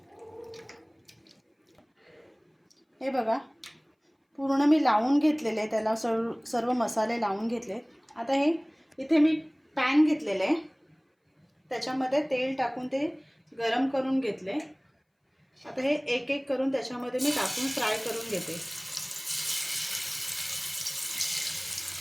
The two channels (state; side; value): identical; both; correlation 1.00